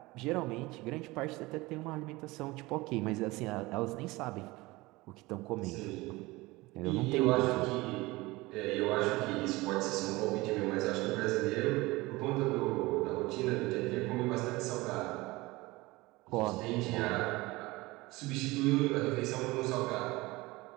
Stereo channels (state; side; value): quieter; left; 21.4 dB